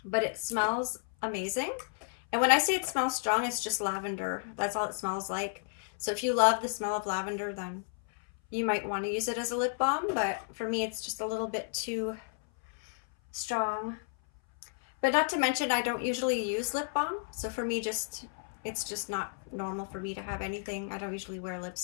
But it smells amazing. And when I say it smells strong, it's just lavender. That's all it smells like. So if you love the smell of lavender, then you might want to use it as a lip balm. But for me, it's just a little bit too strong. But not to mention, I don't usually use lip balm. So for me, it's just not normal for me to have anything. I don't usually wear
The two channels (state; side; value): silent; right; 56 dB below the other